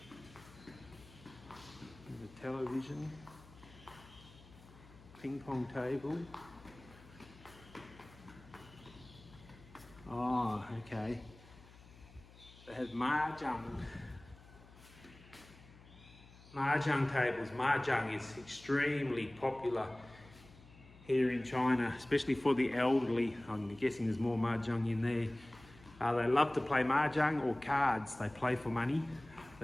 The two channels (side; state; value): left; noise; hum, 22 dB below the sound